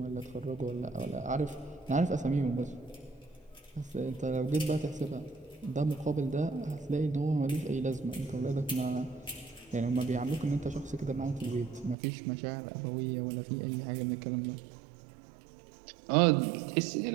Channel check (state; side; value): drops out; left; at 12.0 s